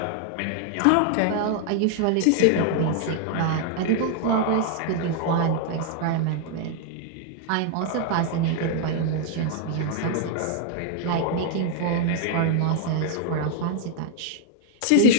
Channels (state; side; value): different; both; correlation 0.00